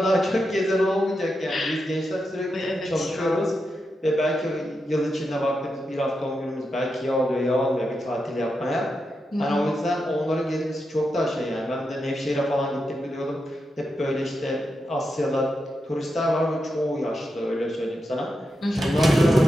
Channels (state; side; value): normal; both; correlation 0.87